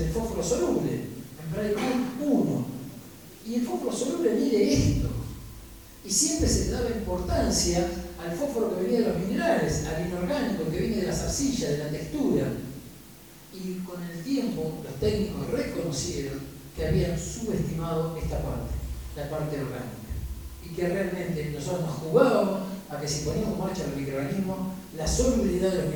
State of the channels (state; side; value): identical; both; correlation 1.00